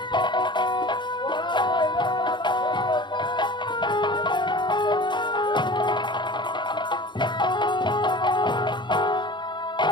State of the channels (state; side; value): late; right; 0.22 ms